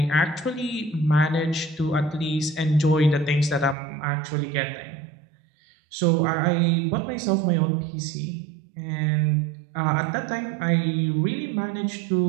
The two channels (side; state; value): left; drops out; at 3.8 s